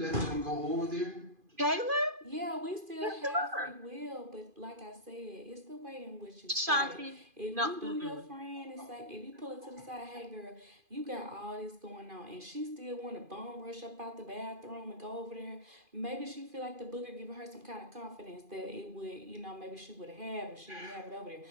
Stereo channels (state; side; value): late; left; 2.5 ms